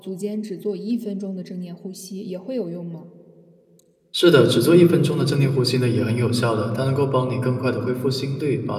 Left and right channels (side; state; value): both; identical; correlation 1.00